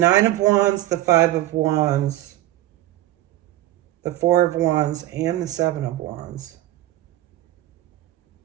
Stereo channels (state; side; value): quieter; left; 15.2 dB